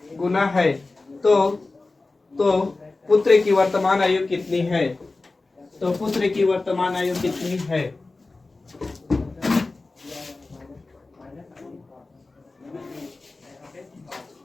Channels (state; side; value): quieter; right; 3.4 dB